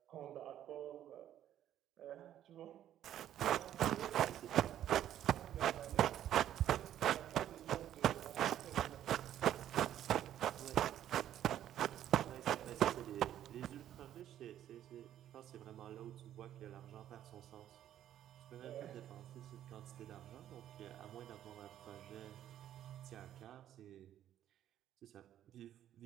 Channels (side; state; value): left; quieter; 11.4 dB